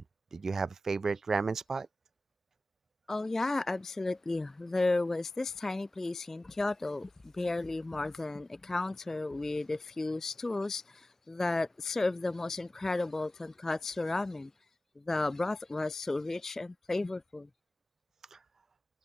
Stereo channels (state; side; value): normal; both; correlation 0.96